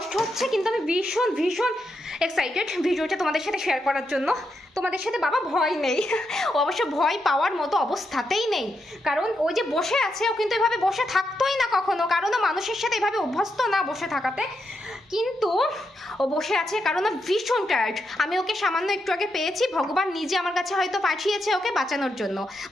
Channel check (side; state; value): both; normal; correlation 0.83